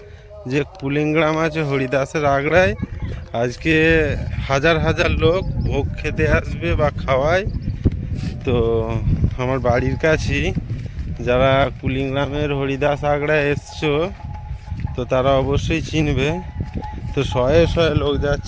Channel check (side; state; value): both; identical; correlation 1.00